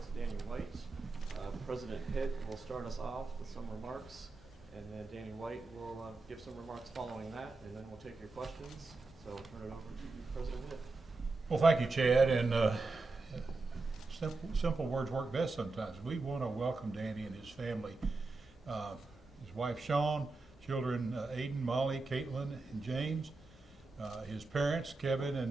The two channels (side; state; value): left; quieter; 3.5 dB